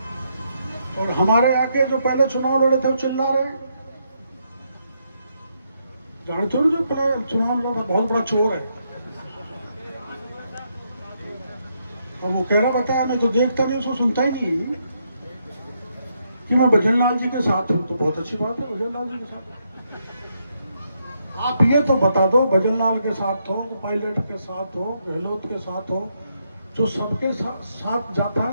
और हमारे आके जो पहले चुनाव लड़े थे वो चिल्ला रहे, जानते हो जो पहले चुनाव लड़ा बहुत बड़ा चोर है। और वो कह रहा बताया, मैं तो देखता नहीं, उसको सुनता ही नहीं कि मैं भजन लाल जी के साथ हूं। तो बहुत अच्छी बात है, भजन लाल जी के साथ आप ये तो बता दो, भजन लाल के साथ हो, पायलट के साथ हो, गहलोत के साथ हो, जो सबके साथ जाता है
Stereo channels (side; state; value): both; inverted; correlation -0.78